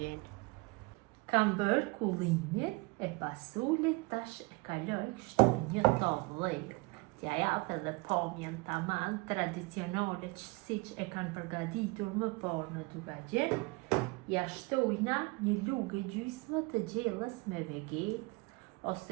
Kam bërë kullimin e pasulit, tash e kaloj kështu një tavë. T'ja jap edhe pamjen taman tradicionale siç e kanë përgatitur më parë në Dugagjen. Ja shtojna një lugë gjysmë të gjellës me vegetë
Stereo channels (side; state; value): left; quieter; 26.0 dB